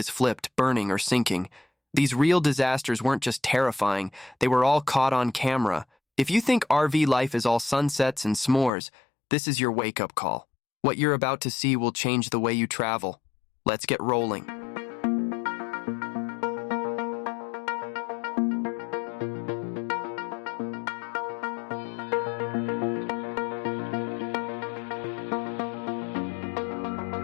flipped, burning or sinking. These real disasters weren't just terrifying, they were all caught on camera. If you think RV life is all sunsets and s'mores, this is your wake-up call. What you're about to see will change the way you travel. Let's get rolling.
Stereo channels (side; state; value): right; drops out; at 8.7 s